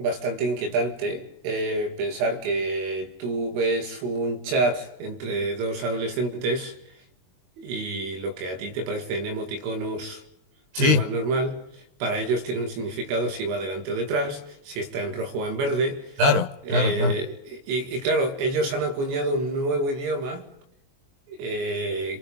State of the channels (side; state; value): left; late; 22 ms